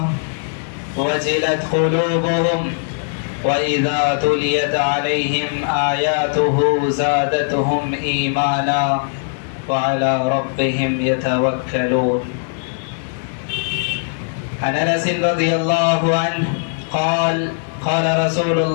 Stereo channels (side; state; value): right; silent; digital silence